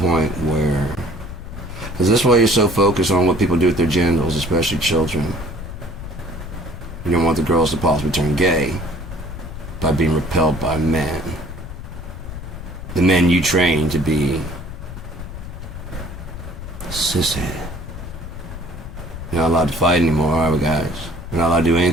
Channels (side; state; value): left; noise; rumble, 10 dB below the sound